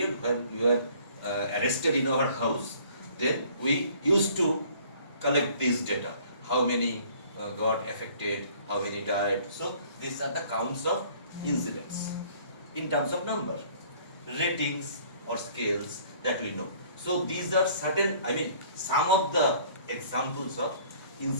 when you were arrested in our house, then we used to collect these data. How many got affected, how many died. So these are the counts of incidents in terms of number, ratings or scales that we know. So these are certain, some of the examples of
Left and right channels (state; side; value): inverted; both; correlation -0.55